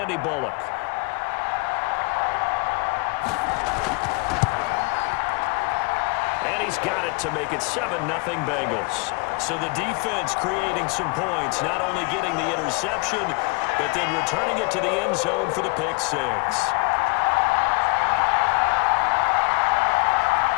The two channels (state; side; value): quieter; right; 28.2 dB